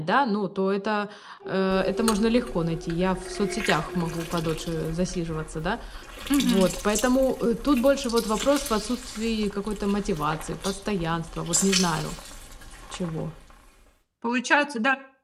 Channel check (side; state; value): both; identical; correlation 1.00